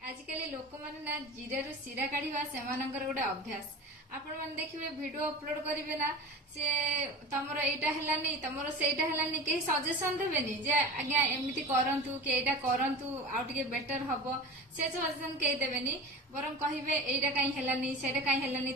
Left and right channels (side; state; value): both; normal; correlation 0.33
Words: लोक मैंने ना जीरा सीरा काढ़ा से गोटे अभ्यास आपण मैंने देखिए वीडियो अपलोड करेंगे ना सी तुम यहाँ है तुम से कहीं सजेसन देवेनि जे आज्ञा एमती करूँ कि यहाँ करूँ आउ टे बेटर हम से सजेसन कहीं देवेनि बर कहे यहाँ कहीं है से कहीं